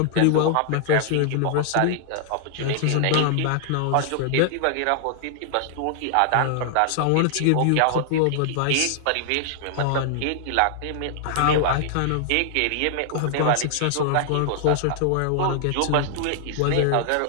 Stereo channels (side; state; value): both; different; correlation -0.01